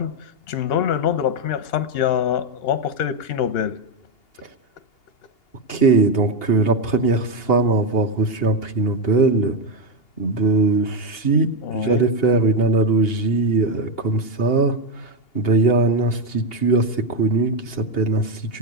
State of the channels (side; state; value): right; late; 2.8 ms